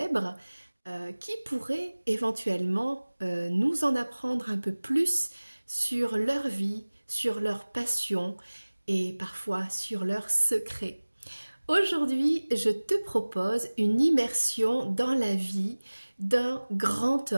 qui pourraient éventuellement nous en apprendre un peu plus sur leur vie, sur leur passion et parfois sur leurs secrets. Aujourd'hui, je te propose une immersion dans la vie d'un grand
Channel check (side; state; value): both; inverted; correlation -1.00